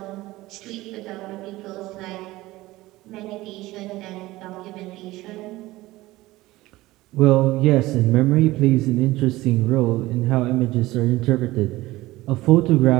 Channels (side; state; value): left; quieter; 18.3 dB